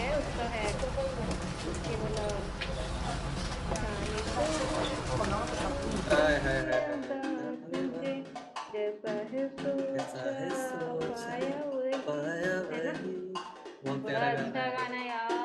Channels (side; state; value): both; identical; correlation 1.00